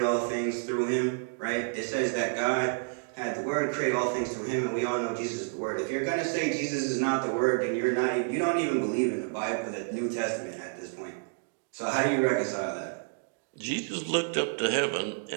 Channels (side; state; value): left; silent; 58 dB below the other